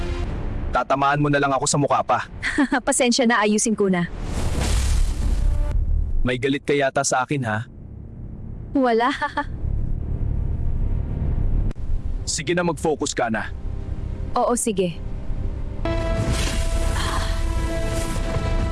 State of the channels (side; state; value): both; identical; correlation 1.00